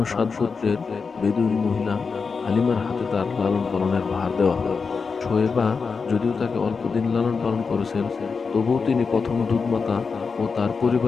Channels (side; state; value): right; quieter; 5.1 dB